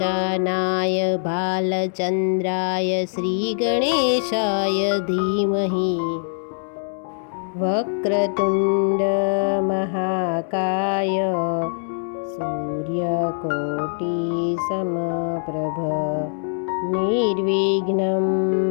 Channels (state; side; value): silent; right; 64 dB below the other